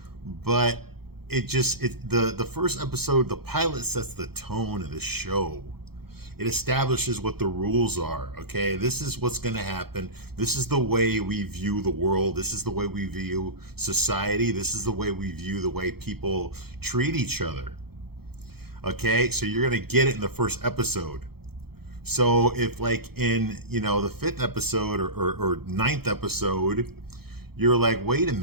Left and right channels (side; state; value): left; late; 0.96 ms